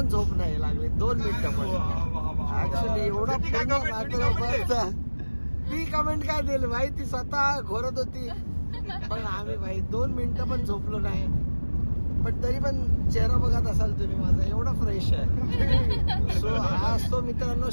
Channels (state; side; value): inverted; both; correlation -1.00